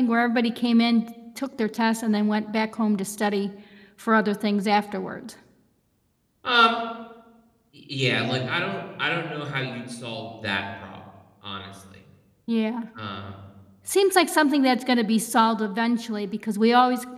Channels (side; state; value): both; identical; correlation 1.00